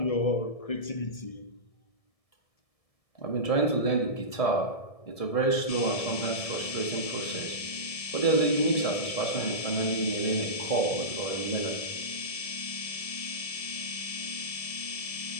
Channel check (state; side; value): late; right; 1.7 ms